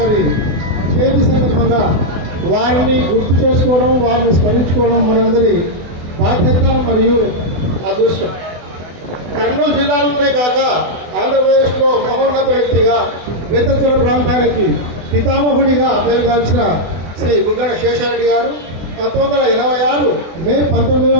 చేతి సందర్భంగా వారిని గుర్తు చేసుకోవడం, వారిని స్మరించుకోవడం మనందరి బాధ్యత మరియు అదృష్టం. కర్నూలు జిల్లాలోనే కాక ఆంధ్రప్రదేశ్లో మహోన్నత వ్యక్తిగా వేతంతుల ప్రాంతానికి పితామహుడిగా పేరుగాల్చిన శ్రీ బుగ్గన శేషారెడ్డి గారు 1986 మే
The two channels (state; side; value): late; left; 24 ms